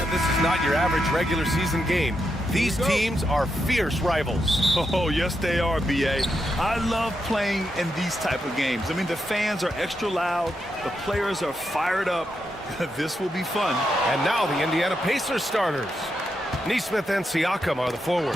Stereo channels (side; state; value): both; normal; correlation 0.84